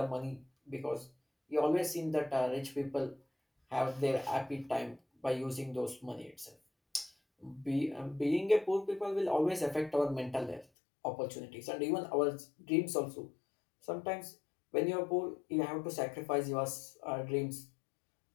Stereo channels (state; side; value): drops out; right; at 10.7 s